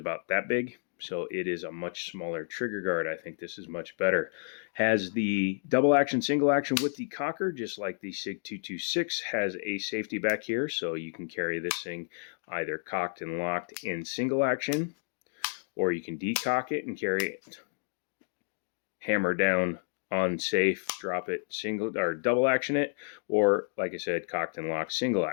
that big, so it is a much smaller trigger guard. I think this is much better. Has the double action, single action with the cocker, just like the SIG 226. Has a safety back here, so you can carry this thing either cocked and locked in single action, or you can decock it and carry it hammer down on safe, drop it, single or double action it, or like I said, cocked and locked single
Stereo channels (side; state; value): right; silent; digital silence